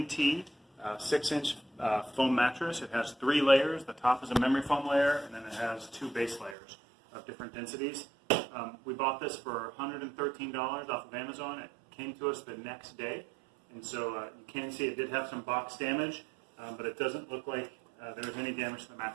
tea 6-inch foam mattress. It has 3 layers. The top is a memory foam layer, and then it has 2 base layers of different densities. We bought this for $113 off of Amazon. It came to us the next day, and so you can see it did have some box damage, but it doesn't look like there was any damage to the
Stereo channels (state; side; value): drops out; left; at 6.6 s